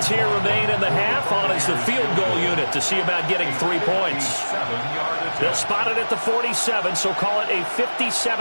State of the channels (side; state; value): both; inverted; correlation -1.00